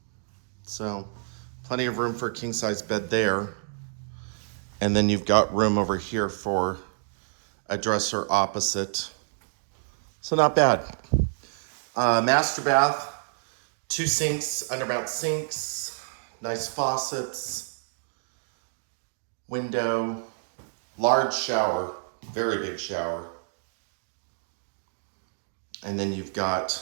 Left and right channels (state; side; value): silent; left; digital silence